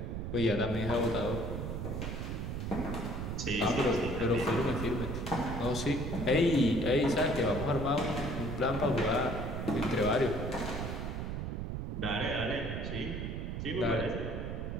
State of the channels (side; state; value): right; noise; rumble, 4 dB below the sound